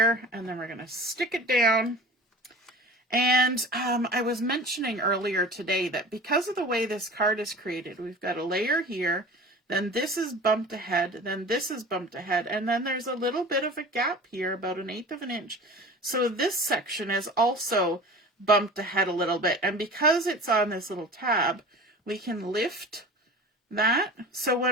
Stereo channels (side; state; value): both; normal; correlation 0.38